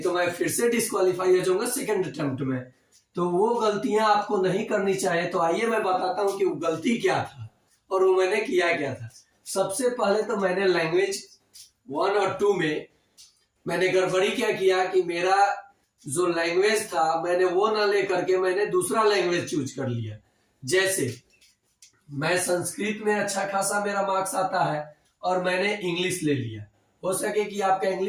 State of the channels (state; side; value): identical; both; correlation 1.00